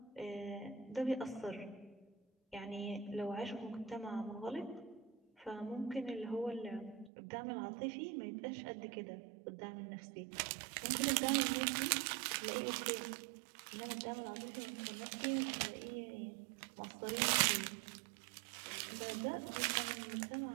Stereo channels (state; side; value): drops out; left; at 7.1 s